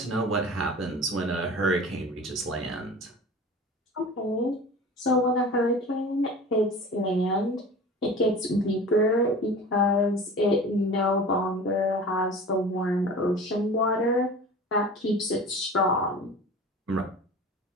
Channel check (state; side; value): normal; both; correlation 0.38